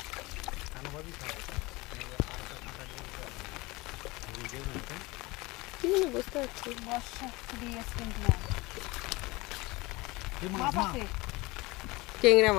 কি জানি বুঝতে পারছি। বর্ষা দিয়ে গেছে কিন্তু না। এই মাছ মাছ না, আছে। টেংরা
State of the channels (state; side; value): quieter; right; 22.8 dB